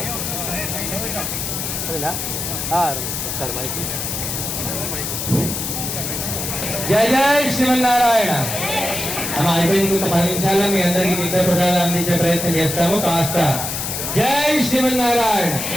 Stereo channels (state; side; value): noise; left; hiss, 3 dB below the sound